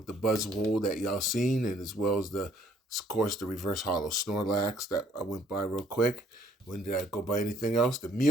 the Buzzwole that y'all seen, and as well as of course, the Reverse Hollow Snorlax that I went by real quick. When did I go by anything else? The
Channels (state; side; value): normal; both; correlation 0.64